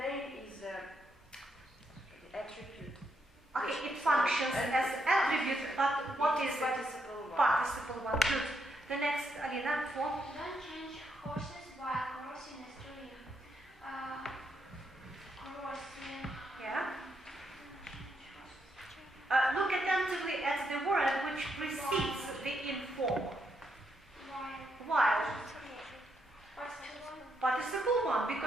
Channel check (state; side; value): normal; both; correlation 0.79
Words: is the attribute. Okay, it functions as attribute, but what is it? Participle 1. Participle 1. Good. The next, Alina, 4. Don't change horses while crossing a stream. Crossing. Yeah. Look attentively at the word which precedes the inform. While. Participle 1,